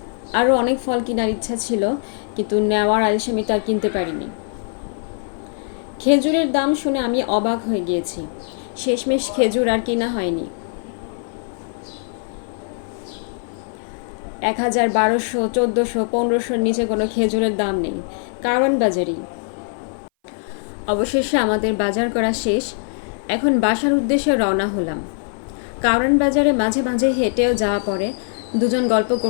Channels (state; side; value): silent; right; 60 dB below the other